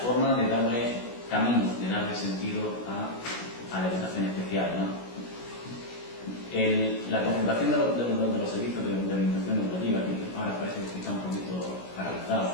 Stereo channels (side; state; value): right; late; 16 ms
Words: de darle camino, de darle sentido a la educación especial, ¿no? La concentración de los servicios de orientación educativa, que ahora parece que está un poquito